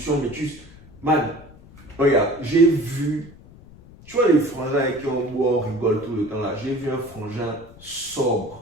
mais man, regarde, j'ai vu, tu vois les frangins avec qui on boit, on rigole tout le temps là, j'ai vu un frangin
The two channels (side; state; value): left; noise; rumble, 22 dB below the sound